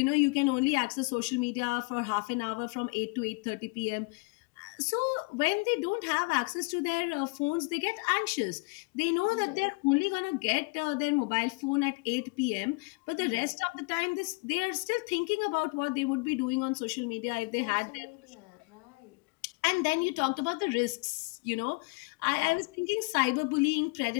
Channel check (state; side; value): quieter; right; 29.5 dB